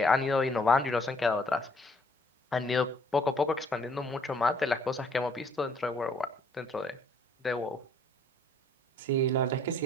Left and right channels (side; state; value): both; normal; correlation 0.63